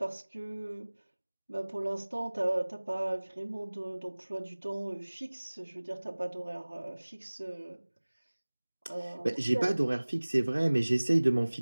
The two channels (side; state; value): both; inverted; correlation -1.00